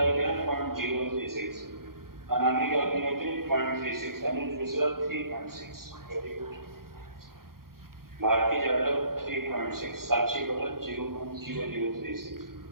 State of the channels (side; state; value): left; late; 0.92 ms